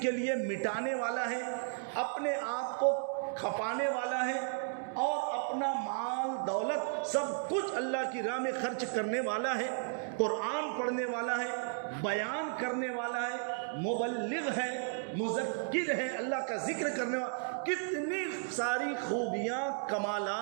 کے لیے مٹانے والا ہے، اپنے آپ کو کھپانے والا ہے، اور اپنا مال دولت سب کچھ اللہ کی راہ میں خرچ کرنے والا ہے، قرآن پڑھنے والا ہے، بیان کرنے والا ہے، مبلغ ہے، مذکر ہے، اللہ کا ذکر کرنے والا، کتنی ساری خوبیاں،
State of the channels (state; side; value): silent; left; digital silence